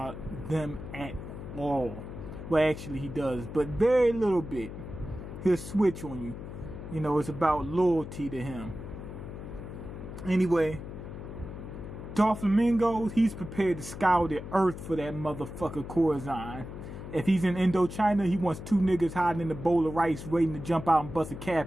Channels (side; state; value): left; noise; hum, 10 dB below the sound